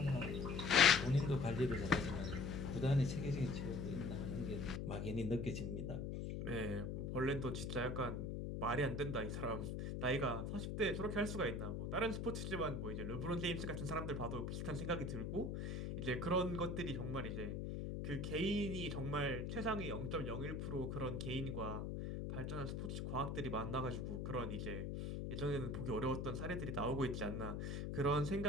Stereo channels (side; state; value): left; noise; hum, 3 dB below the sound